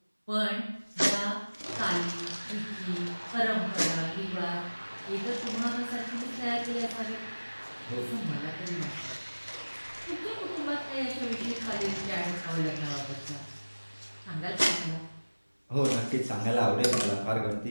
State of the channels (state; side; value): inverted; both; correlation -1.00